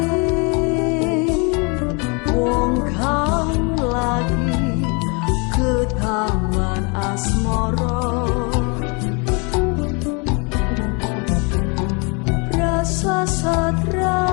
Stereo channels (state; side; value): quieter; right; 32.5 dB